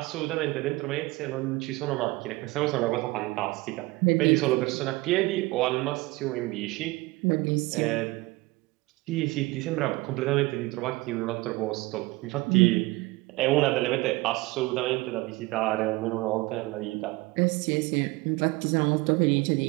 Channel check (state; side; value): quieter; left; 21.7 dB